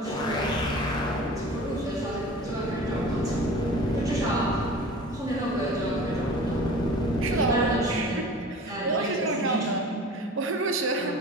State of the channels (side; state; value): both; normal; correlation 0.40